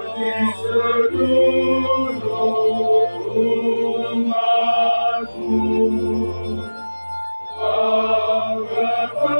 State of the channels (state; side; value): inverted; both; correlation -1.00